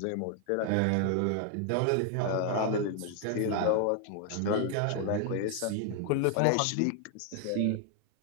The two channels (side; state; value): both; different; correlation 0.00